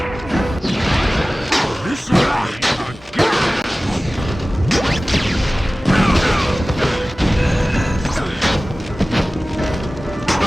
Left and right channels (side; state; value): both; normal; correlation 0.97